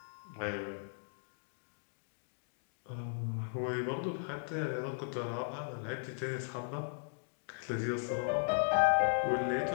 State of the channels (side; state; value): right; silent; digital silence